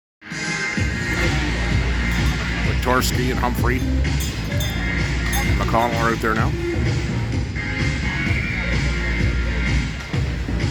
Torsky and Humphrey. McConnell are out there now.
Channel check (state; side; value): identical; both; correlation 1.00